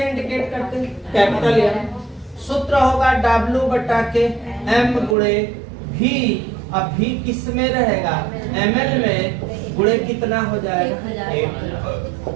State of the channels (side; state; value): left; drops out; at 5.2 s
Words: इंडिकेट करते हैं कैपिटल M। सूत्र होगा W बटा के M गुणे V। अब V किस में रहेगा ml में गुणे कितना हो जाएगा 1।